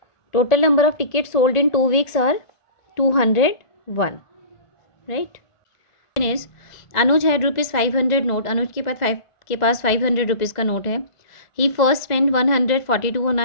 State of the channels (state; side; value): late; right; 1.5 ms